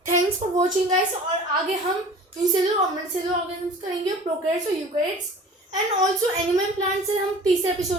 Thanks for watching guys. और आगे हम यूनिसेलुलर और मल्टीसेलुलर ऑर्गेनिज्म्स करेंगे, प्रोकैरियोट्स और eukaryotes, and also animal plants हम तीसरे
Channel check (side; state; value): both; normal; correlation 0.43